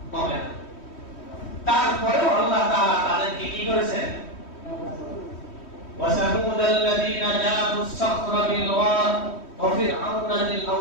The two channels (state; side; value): late; right; 3.1 ms